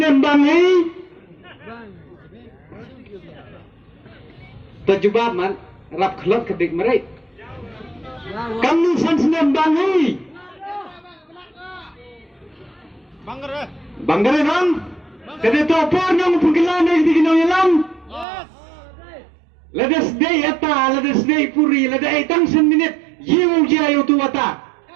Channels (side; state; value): left; drops out; at 18.2 s